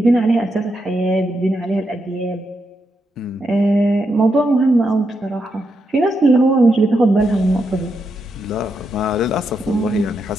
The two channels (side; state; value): both; normal; correlation 0.83